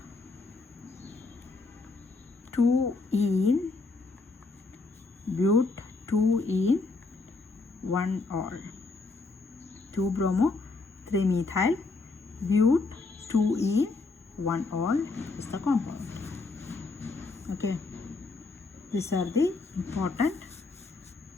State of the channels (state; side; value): quieter; right; 3.7 dB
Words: 2-ene, 1-ol. 2-bromo, 3-methyl, but, 2-ene, 1-ol is the compound. Okay, these are the important